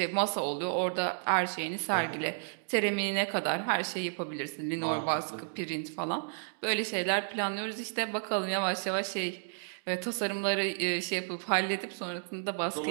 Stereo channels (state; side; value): silent; left; digital silence